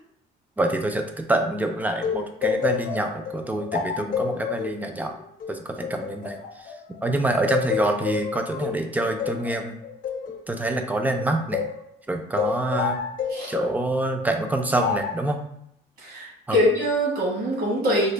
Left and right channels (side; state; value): both; normal; correlation 0.53